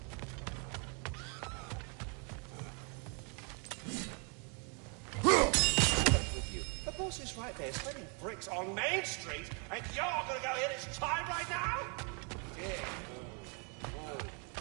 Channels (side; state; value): left; quieter; 36.5 dB